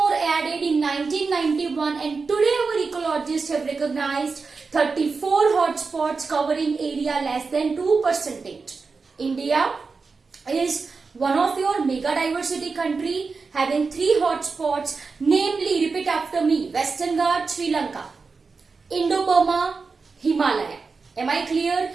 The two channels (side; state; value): left; quieter; 4.5 dB